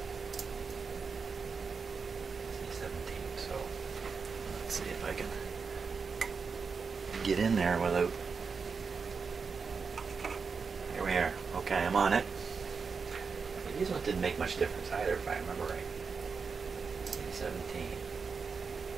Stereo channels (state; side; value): quieter; left; 5.2 dB